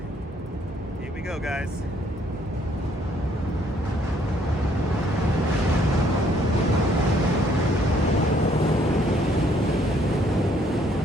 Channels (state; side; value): normal; both; correlation 0.66